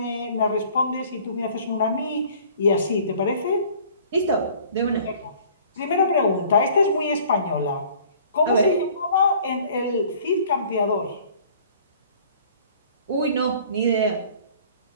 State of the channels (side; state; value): both; inverted; correlation -0.52